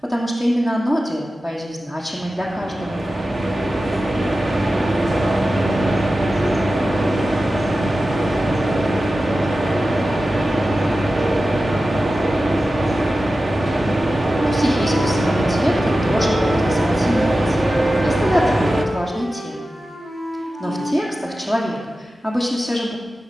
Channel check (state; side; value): normal; both; correlation 0.94